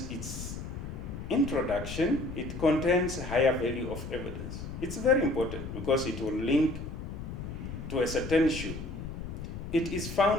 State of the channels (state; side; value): noise; left; rumble, 8 dB below the sound